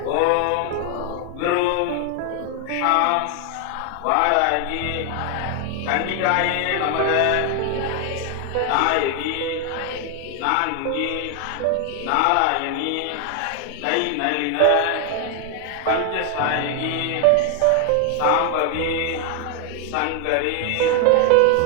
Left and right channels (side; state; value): both; different; correlation 0.00